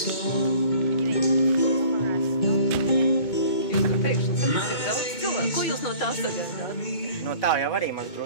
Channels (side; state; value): right; late; 2.2 ms